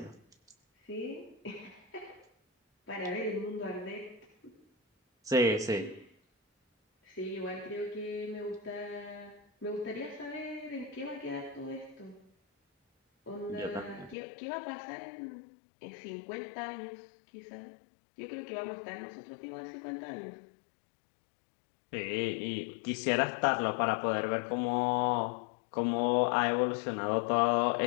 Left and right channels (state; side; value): drops out; right; at 14.2 s